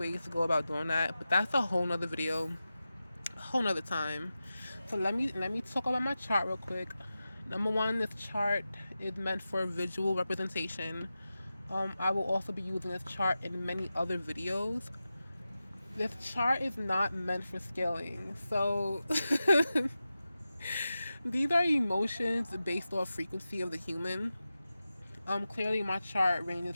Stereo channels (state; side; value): inverted; both; correlation -0.93